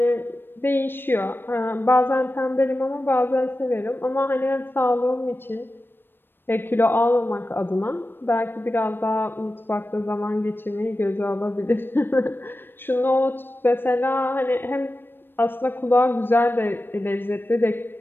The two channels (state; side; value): late; right; 0.097 ms